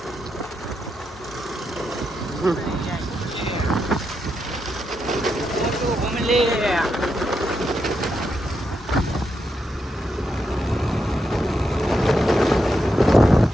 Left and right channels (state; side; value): normal; both; correlation 0.83